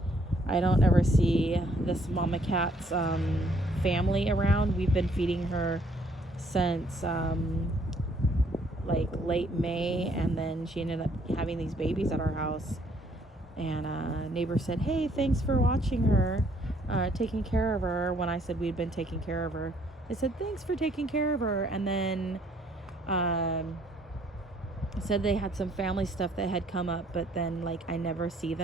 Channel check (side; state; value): both; normal; correlation 0.65